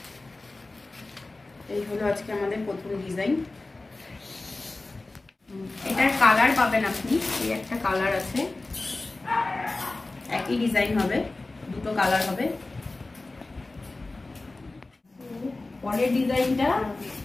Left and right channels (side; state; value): right; quieter; 3.2 dB